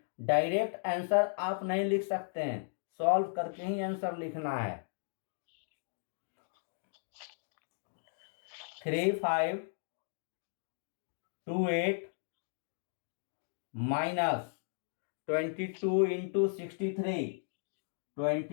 Direct answer आप नहीं लिख सकते हैं, solve करके ही answer लिखना है. 3 5 2 8 minus 22 into 63.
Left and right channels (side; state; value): right; silent; digital silence